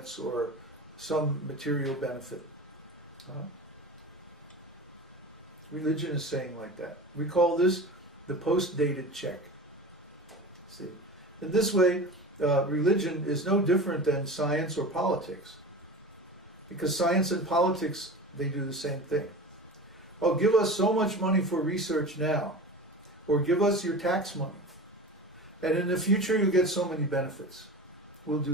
or some material benefit. Religion is saying like that. We call this the post-dated check. See, in this way, religion is no different than science or politics, because science and politics, they do the same thing. Oh, give us so much money for research now, or give us your tax money, and in the future you'll get so many benefits. We'll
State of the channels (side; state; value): both; normal; correlation 0.33